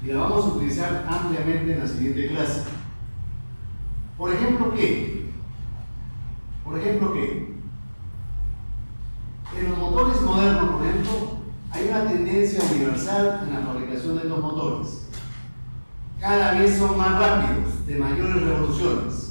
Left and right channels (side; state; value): both; inverted; correlation -1.00